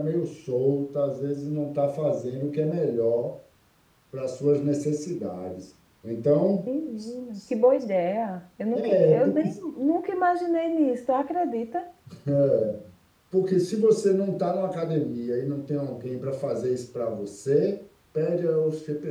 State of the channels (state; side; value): identical; both; correlation 1.00